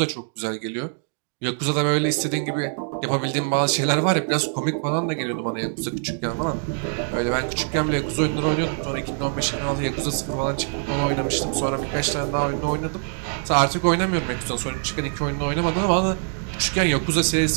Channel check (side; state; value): left; silent; 58 dB below the other